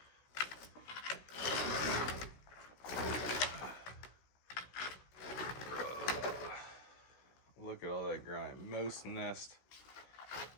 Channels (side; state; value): right; late; 16 ms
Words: Look at all that grime. Mouse nest.